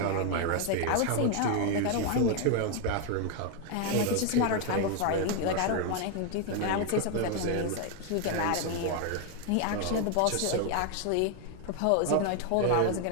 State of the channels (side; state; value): both; different; correlation 0.01